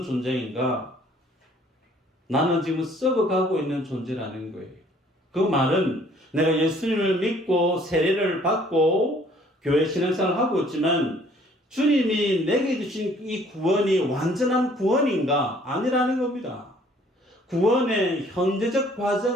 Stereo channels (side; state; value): both; normal; correlation 0.58